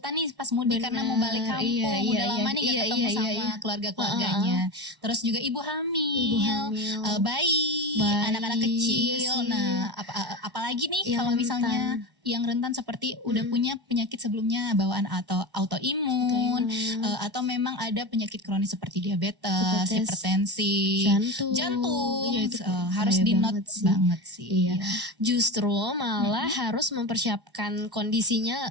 nih pas mudik karena mau balik kampung, udah lama nih gak ketemu sama keluarga-keluarganya. Terus juga ibu hamil, bayi, anak-anak kecil. Nah, apalagi nih kalau misalnya yang rentan seperti udah punya penyakit sebelumnya bawaan atau autoimun, atau memang ada penyakit kronis seperti diabetes, hipertensi, jantung, ya, itu harus di note banget sih. Iya. Justru malah harus mempersiapkan kondisinya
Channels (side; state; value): left; late; 1.1 ms